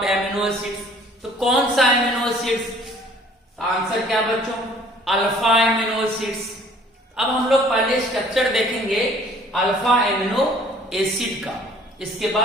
amino acids. तो कौन सा एमिनो एसिड्स, आंसर क्या बच्चों, अल्फा एमिनो एसिड्स। अब हम लोग पहले स्ट्रक्चर देखेंगे अल्फा एमिनो एसिड का, इसके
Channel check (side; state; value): both; normal; correlation 0.55